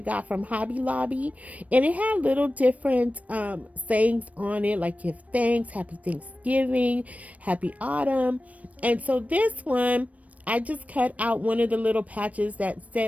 got from Hobby Lobby, and it had little different sayings on it, like give thanks, happy Thanksgiving, happy autumn. And so this one, I just cut out one of the little patches that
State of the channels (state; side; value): late; left; 0.068 ms